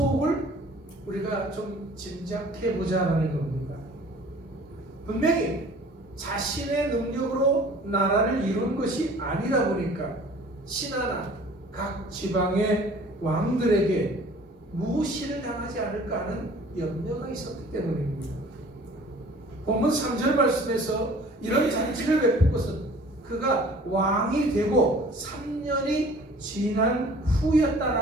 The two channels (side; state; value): both; normal; correlation 0.49